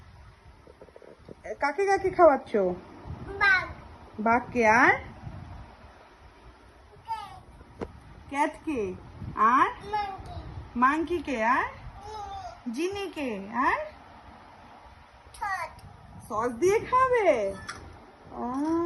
কাকে কাকে খাওয়াচ্ছো? বাঘ। বাঘকে আর ক্যাটকে আর মাংকি। মাংকিকে আর মিমি। জিনিকে আর ঠোঁট। সস দিয়ে খাবে? ও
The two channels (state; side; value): identical; both; correlation 1.00